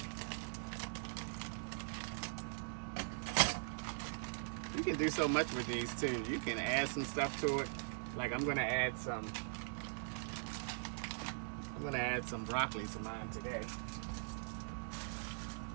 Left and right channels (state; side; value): silent; left; digital silence